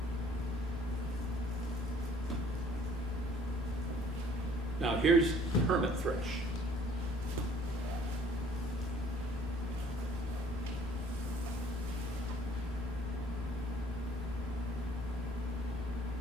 Now here's the hermit thrush.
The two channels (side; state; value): both; normal; correlation 0.56